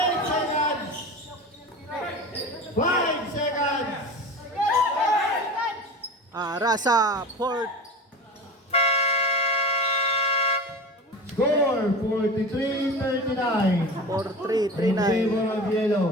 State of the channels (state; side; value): normal; both; correlation 0.32